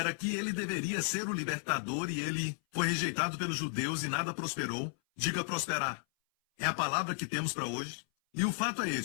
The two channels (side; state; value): right; silent; 55 dB below the other